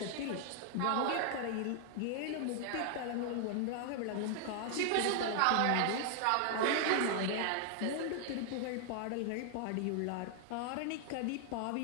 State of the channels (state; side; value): different; both; correlation 0.00